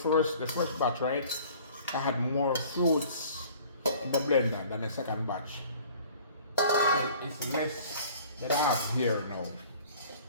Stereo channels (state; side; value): inverted; both; correlation -0.50